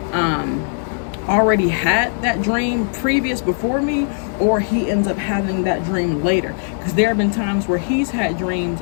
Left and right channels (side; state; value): right; silent; 66 dB below the other